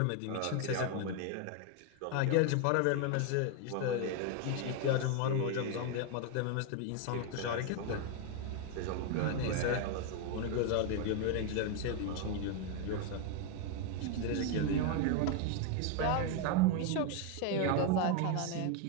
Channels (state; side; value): different; both; correlation 0.01